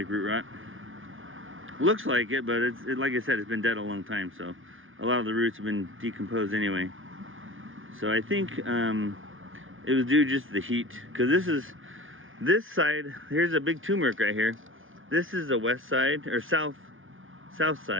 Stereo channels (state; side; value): late; left; 0.58 ms